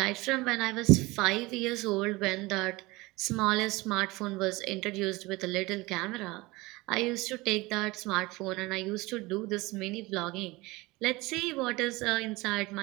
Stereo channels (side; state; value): left; quieter; 22.0 dB